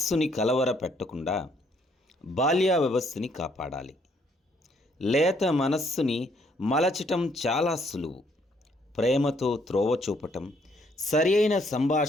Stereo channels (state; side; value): normal; both; correlation 0.68